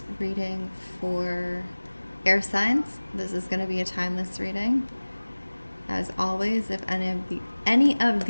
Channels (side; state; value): both; inverted; correlation -1.00